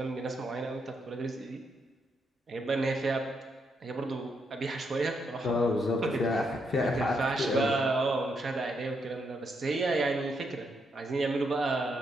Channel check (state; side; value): normal; both; correlation 0.78